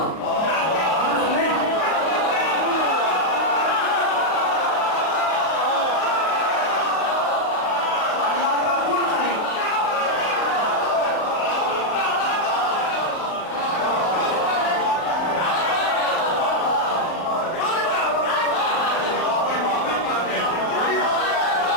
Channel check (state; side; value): late; right; 38 ms